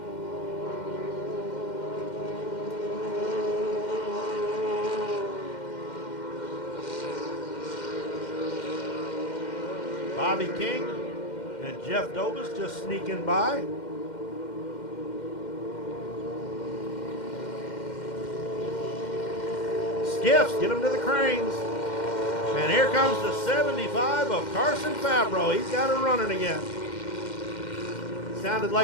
Bobby King and Jeff Dobis just sneaking by. Skiffs, get them to the cranes. And here comes the 75 of Carson Fabro. He's got it running again. Sounded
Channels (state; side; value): late; right; 2.1 ms